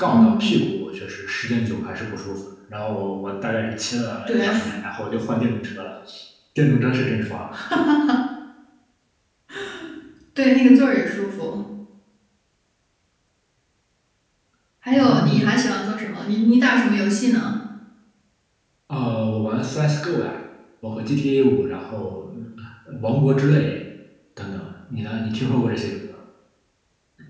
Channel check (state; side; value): identical; both; correlation 1.00